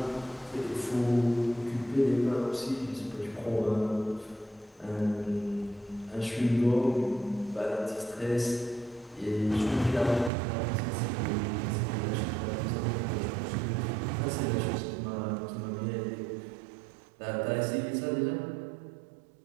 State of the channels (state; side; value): drops out; left; at 10.3 s